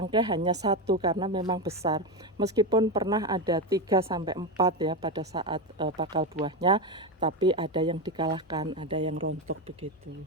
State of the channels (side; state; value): both; normal; correlation 0.13